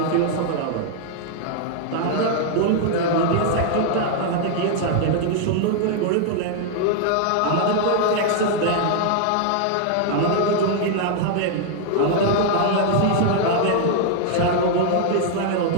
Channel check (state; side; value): different; both; correlation 0.00